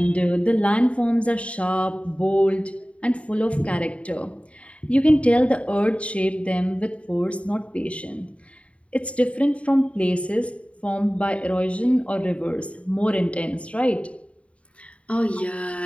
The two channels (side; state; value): right; late; 0.063 ms